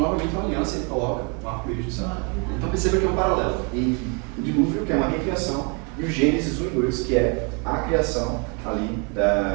novamente uma aliança e ele coloca um arco-íris do céu. Então, perceba que é um paralelo entre o dilúvio, que é uma recriação, e o Gênesis 1 e 2, que é a criação ali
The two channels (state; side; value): quieter; left; 33.5 dB